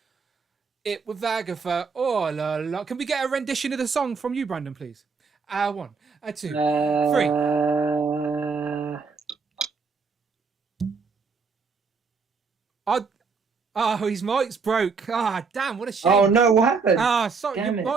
It with Agatha. Oh, la, la. Can we get a rendition of the song from you, Brandon, please? 1, 2, 3. His mic's broke. Damn, what a shame. Oh no, what happened? Sorry, your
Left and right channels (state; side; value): quieter; left; 5.0 dB